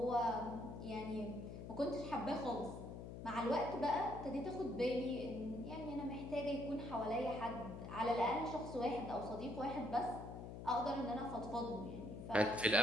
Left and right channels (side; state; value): left; noise; hum, 9 dB below the sound